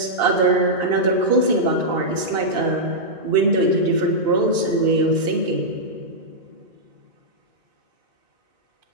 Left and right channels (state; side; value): late; left; 2.8 ms